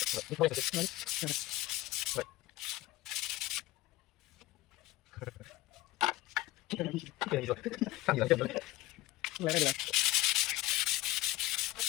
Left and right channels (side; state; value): right; quieter; 17.1 dB